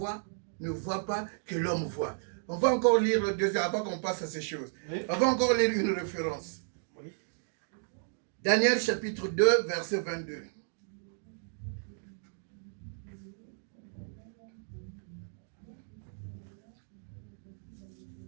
ne voit pas, que l'homme voit? On va encore lire le deuxième avant qu'on passe à ces choses. Oui. On va encore lire une référence. Oui. Daniel chapitre 2, verset 22.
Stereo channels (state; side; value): silent; left; digital silence